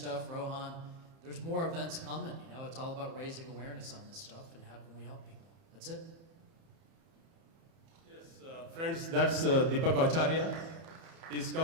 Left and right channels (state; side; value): late; left; 30 ms